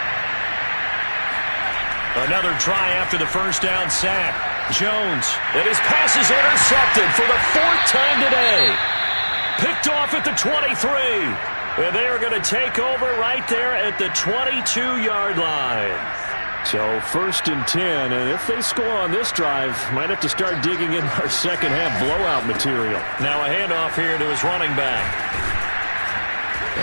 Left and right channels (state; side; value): inverted; both; correlation -1.00